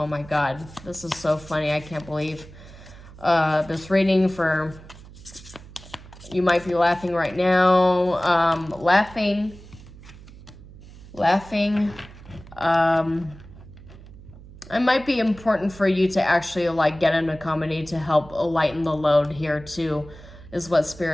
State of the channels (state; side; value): noise; right; hum, 19 dB below the sound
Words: my God, this is so funny. I can't believe this reading for, you might be laughing right now. Laughing. It might be important for you to actually like get into comedy to help lighten the load here too, is what